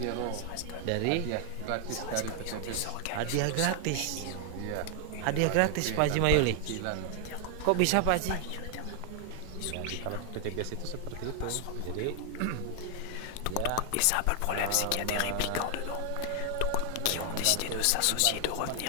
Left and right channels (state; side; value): different; both; correlation 0.00